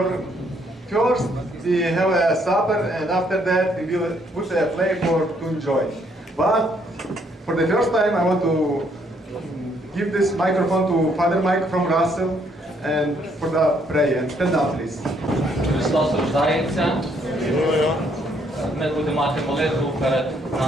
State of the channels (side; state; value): both; normal; correlation 0.69